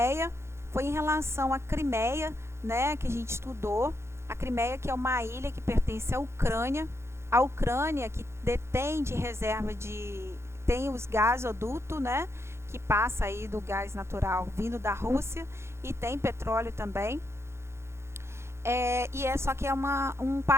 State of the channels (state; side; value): late; left; 0.13 ms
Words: foi em relação à Crimeia, né, que a gente estudou. A Crimeia, que é uma ilha que pertence à Ucrânia. A Ucrânia, que detém de reserva tem os gasodutos, né, que passa aí do gás natural vindo da Rússia, e tem petróleo também. Só que é um